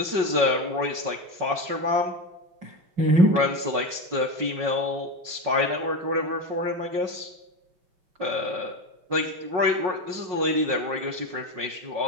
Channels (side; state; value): left; late; 5.6 ms